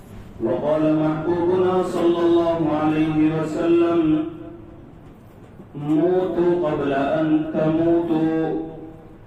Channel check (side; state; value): both; identical; correlation 1.00